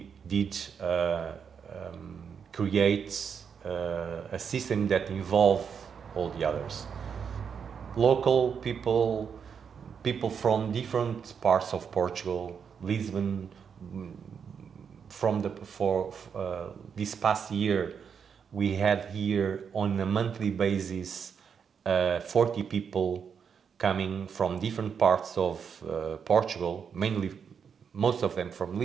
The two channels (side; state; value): left; quieter; 6.9 dB